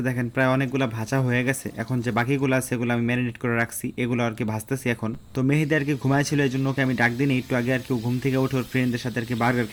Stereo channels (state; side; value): identical; both; correlation 1.00